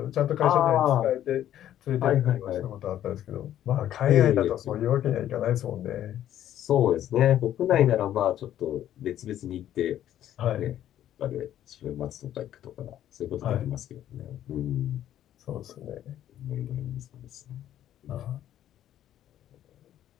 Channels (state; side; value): quieter; right; 11.6 dB